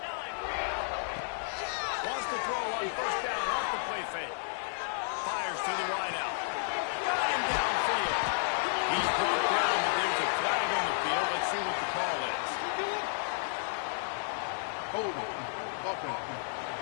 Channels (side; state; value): right; silent; digital silence